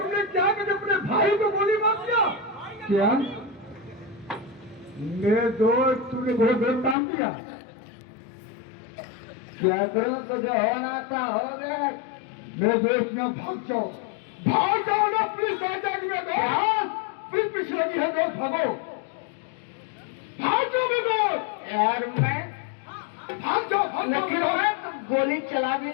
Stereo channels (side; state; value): right; drops out; at 7.0 s